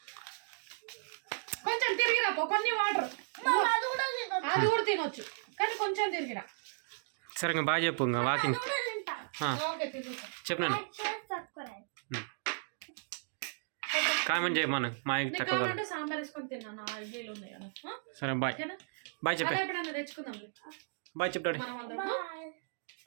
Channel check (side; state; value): left; silent; digital silence